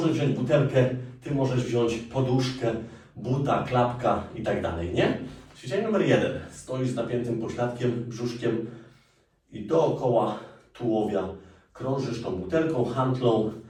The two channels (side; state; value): both; identical; correlation 1.00